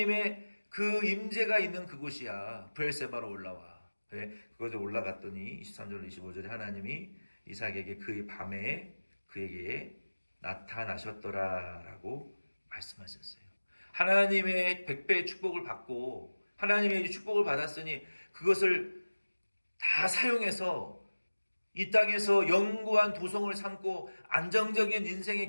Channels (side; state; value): both; inverted; correlation -1.00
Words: 그 임재가 있는 그곳이야. 브엘세바로 올라와. 그래? 그곳에 올라갔더니 23절 25절에 하나님이 이삭에게 그 밤에 그에게 나타나셨더라라고 말씀하셨어요. 하나님의 100배의 축복을 받고 하나님의 축복을 받았으니 그것을 다 사용해서 이 땅에서 영구한 도성을 삼고 안정적인 인생의